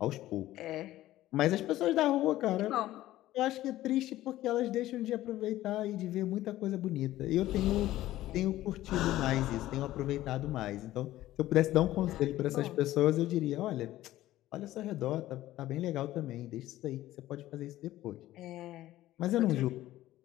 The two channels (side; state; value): right; quieter; 15.0 dB